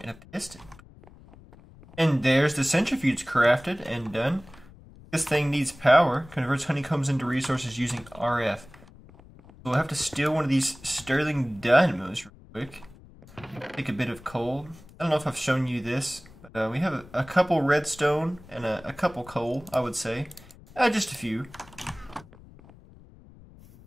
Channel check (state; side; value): noise; left; rumble, 22 dB below the sound